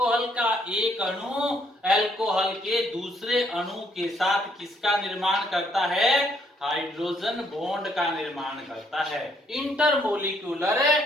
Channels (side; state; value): both; normal; correlation 0.69